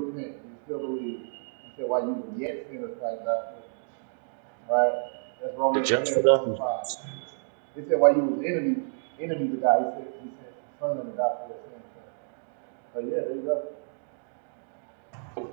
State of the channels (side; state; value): left; silent; digital silence